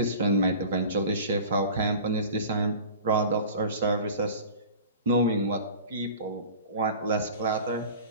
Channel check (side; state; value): both; inverted; correlation -0.39